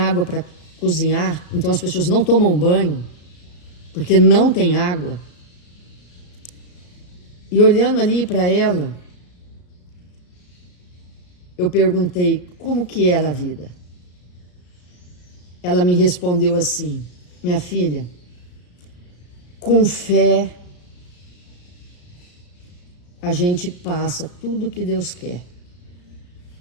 para cozinhar, então as pessoas não tomam banho, porque não tem água. E olhando ali para ela, eu perguntei como que era a vida. Ela me respondeu assim: minha filha, com fé a gente passa tudo que Deus quer.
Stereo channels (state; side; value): late; right; 34 ms